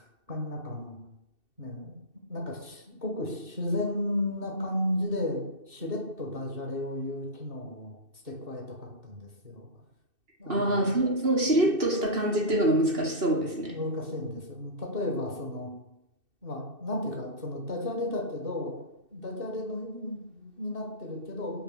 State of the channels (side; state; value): left; late; 2.6 ms